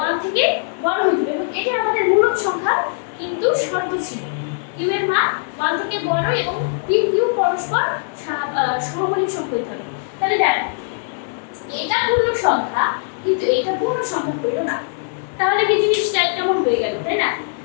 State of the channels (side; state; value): right; silent; 62 dB below the other